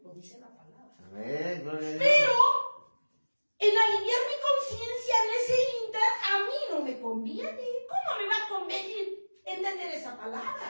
lo dice la palabra. Amén, gloria a Dios. Pero en aliviar mi conciencia en ese inter, a mí no me conviene. ¿Cómo me va a convenir entender esa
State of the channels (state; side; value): inverted; both; correlation -1.00